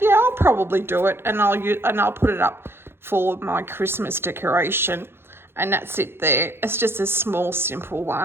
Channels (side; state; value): left; late; 0.11 ms